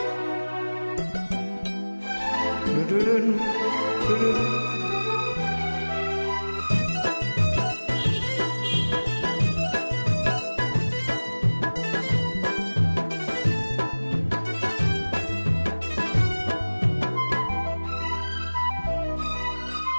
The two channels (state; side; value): inverted; both; correlation -1.00